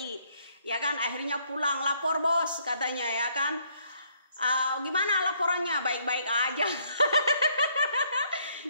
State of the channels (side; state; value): both; inverted; correlation -0.67